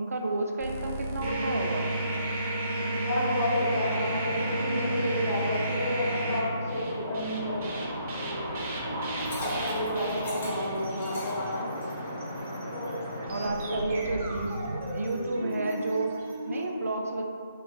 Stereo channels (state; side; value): inverted; both; correlation -0.70